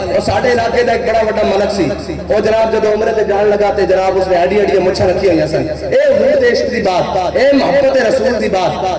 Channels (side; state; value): both; identical; correlation 1.00